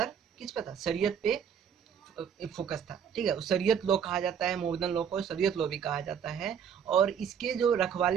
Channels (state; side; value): quieter; left; 7.9 dB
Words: किस पे था, शरीयत पे फोकस था। ठीक है, शरीयत लॉ कहा जाता है, मोहम्मदन लॉ को शरीयत लॉ भी कहा जाता है। और इसके जो